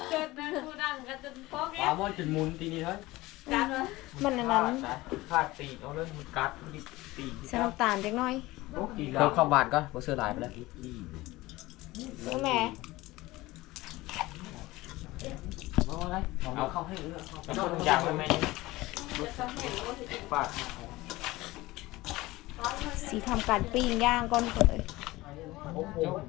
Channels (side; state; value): right; quieter; 19.3 dB